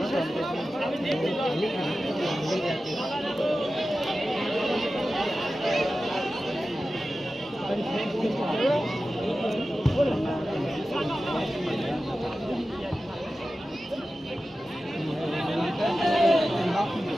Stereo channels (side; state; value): both; normal; correlation 0.94